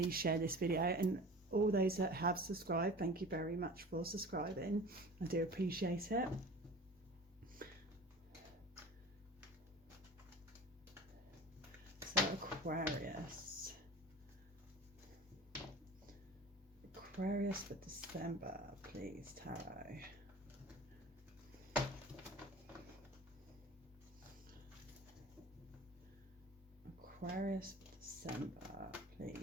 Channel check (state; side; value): normal; both; correlation 0.39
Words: share this video, and all those that have subscribed, thank you very much for subscribing. I do appreciate it. So Aquarius for December, please, Tarot. Aquarius for December,